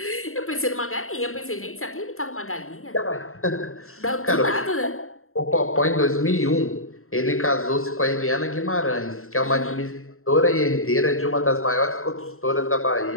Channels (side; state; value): right; late; 0.62 ms